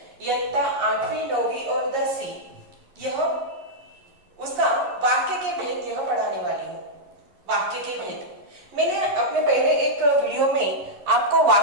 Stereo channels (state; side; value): late; left; 11 ms